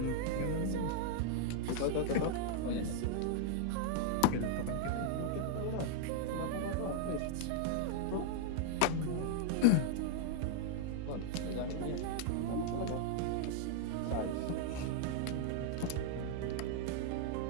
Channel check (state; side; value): different; both; correlation -0.01